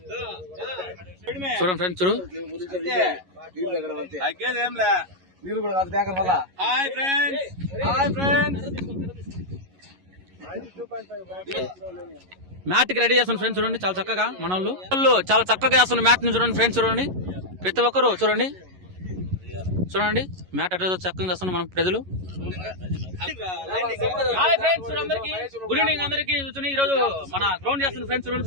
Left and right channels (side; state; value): left; late; 11 ms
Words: చూడండి ఫ్రెండ్స్, చూడు హాయ్ ఫ్రెండ్స్ మ్యాట్ కి రెడీ చేస్తున్న ఫ్రెండ్స్. చూడండి చాలా చక్కగా మన వాళ్ళు చాలా చక్కగా చేస్తున్న మ్యాట్ ని చూడండి ఫ్రెండ్స్. చూడండి ప్రతి ఒక్కరు చూడండి చూడండి మ్యాట్ అట్లా చక్కగా చేస్తున్న మన ప్రజలు. హాయ్ ఫ్రెండ్స్, అందరికి గుడ్ ఈవినింగ్. అందరికి చూడండి ఈ రోజు మన గ్రౌండ్ చేస్తున్న ఫ్రెండ్స్ చూడండి